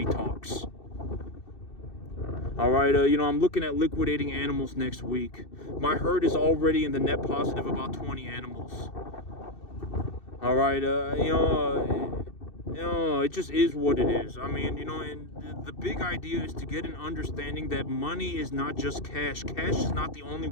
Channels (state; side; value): late; right; 2.6 ms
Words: talks. All right, I'm looking at liquidating animals next week. My herd is already in the net positive about 20 animals. All right, it just is what it is. I mean, and the big idea is to get an understanding that money is not just cash. Cash is not the only